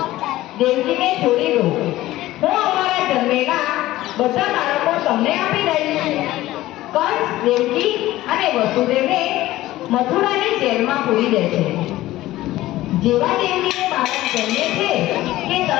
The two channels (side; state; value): right; quieter; 16.2 dB